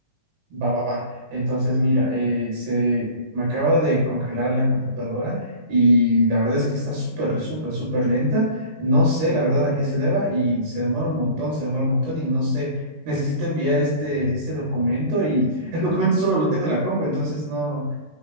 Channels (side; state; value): left; late; 19 ms